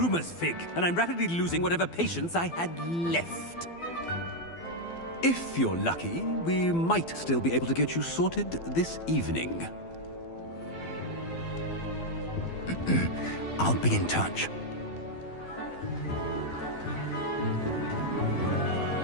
Fig, and I'm rapidly losing whatever patience I had left. If you're lucky, we might still be able to get you sorted this evening. I'll be in touch.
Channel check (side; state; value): right; late; 12 ms